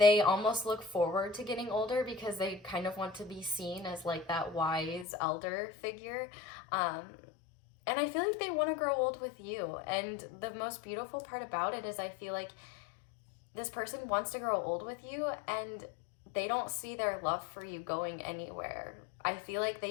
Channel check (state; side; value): drops out; right; at 5.1 s